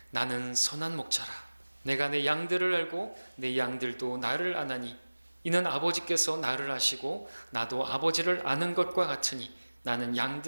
나는 선한 목자라. 내가 내 양들을 알고 내 양들도 나를 아나니 이는 아버지께서 나를 아시고 나도 아버지를 아는 것과 같으니 나는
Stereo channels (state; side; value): inverted; both; correlation -1.00